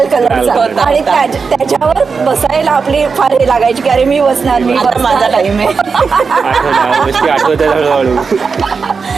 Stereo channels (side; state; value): left; quieter; 5.1 dB